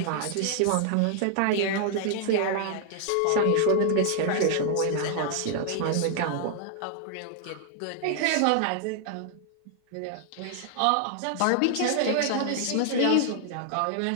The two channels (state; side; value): different; both; correlation 0.00